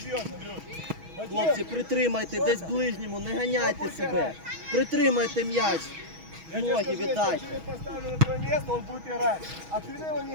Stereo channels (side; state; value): left; late; 6.2 ms